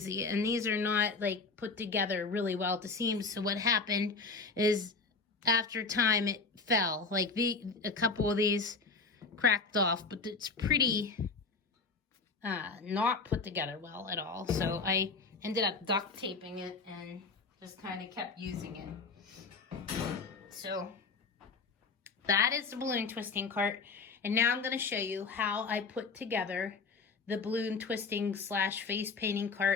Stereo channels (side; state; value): right; quieter; 4.4 dB